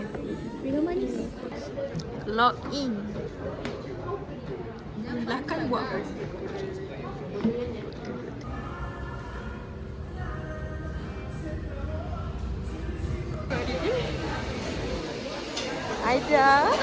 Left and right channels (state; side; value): identical; both; correlation 1.00